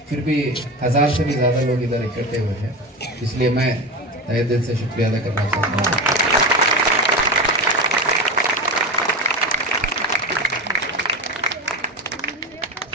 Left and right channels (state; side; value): normal; both; correlation 0.23